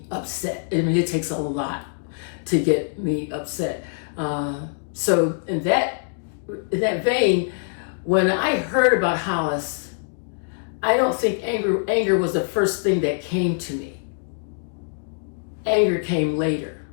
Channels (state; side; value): silent; right; digital silence